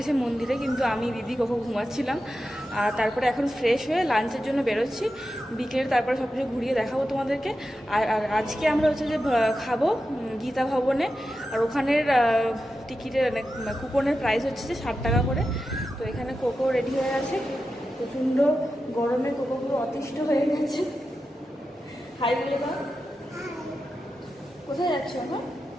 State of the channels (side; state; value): both; normal; correlation 0.90